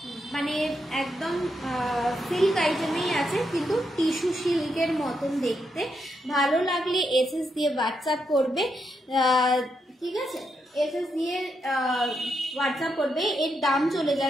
মানে একদম সিল্ক আইটেমেই আছে কিন্তু টিস্যু সিল্কের মতন দেখতে। ভালো লাগলে এসএস দিয়ে হোয়াটসঅ্যাপ করবে। ঠিক আছে, এসএস দিয়ে হোয়াটসঅ্যাপ করবে। এর দাম চলে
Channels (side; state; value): both; normal; correlation 0.82